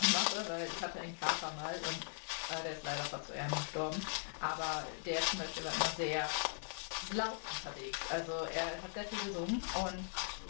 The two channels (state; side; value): silent; right; 51 dB below the other